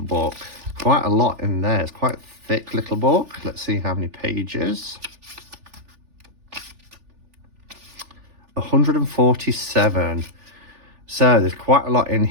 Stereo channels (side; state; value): left; late; 3.4 ms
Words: book. Quite a lot in there. It's quite a thick little book. Let's see how many pages. 147. So there's quite a lot in